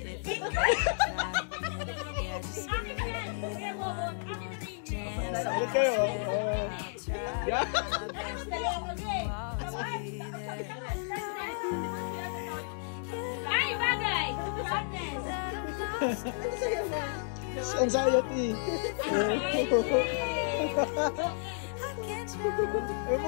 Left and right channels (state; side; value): silent; right; digital silence